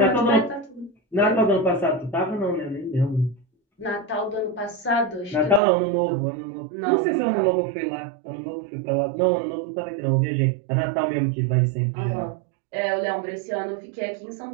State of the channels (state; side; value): drops out; left; at 5.6 s